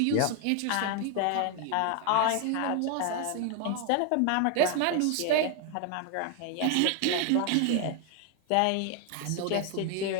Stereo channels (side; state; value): both; different; correlation 0.01